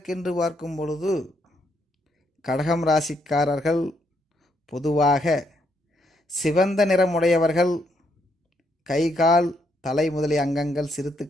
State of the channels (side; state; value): both; normal; correlation 0.75